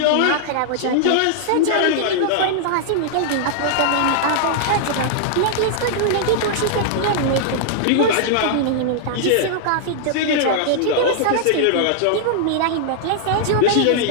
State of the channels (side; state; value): both; different; correlation -0.01